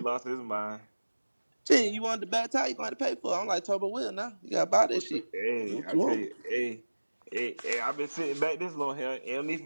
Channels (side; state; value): both; inverted; correlation -1.00